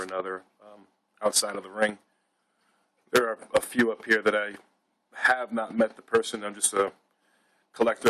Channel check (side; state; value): both; identical; correlation 1.00